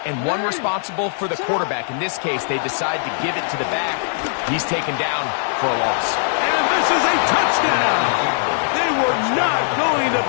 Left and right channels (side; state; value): right; silent; 57 dB below the other